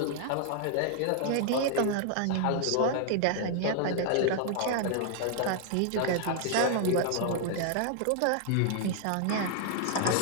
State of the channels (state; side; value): different; both; correlation 0.00